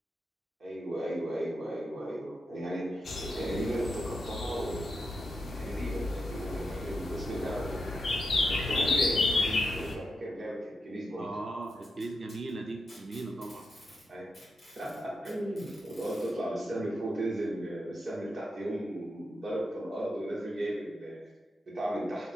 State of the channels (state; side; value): normal; both; correlation 0.86